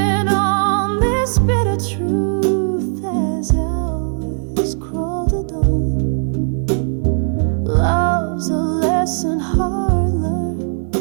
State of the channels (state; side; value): silent; left; digital silence